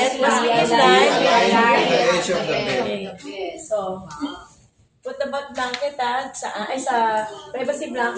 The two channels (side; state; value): both; identical; correlation 1.00